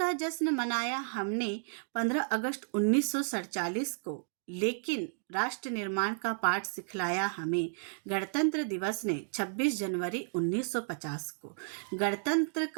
जश्न मनाया हमने 15 अगस्त 1947 को, लेकिन राष्ट्र निर्माण का पाठ सिखलाया हमें गणतंत्र दिवस ने 26 जनवरी 1950 को। गणतंत्र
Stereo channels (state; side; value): silent; left; digital silence